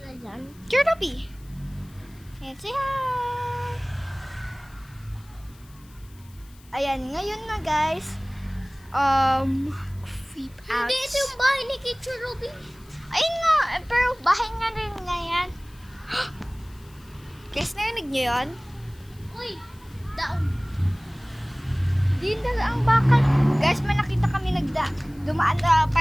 dyan? Kirby. And say hi! Ayan, ngayon na guys. Creep out. Hindi, ito yung bahay ni Teacher Ruby. Ayun nga, pero bahay nga rin nga yan. Guys, narinig niyo yun? Uy, daon. Di na ang bakal. Guys, may nakita kami dumaan na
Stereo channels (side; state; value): left; noise; hiss, 27 dB below the sound